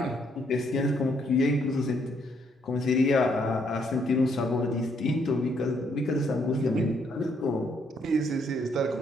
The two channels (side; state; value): both; normal; correlation 0.71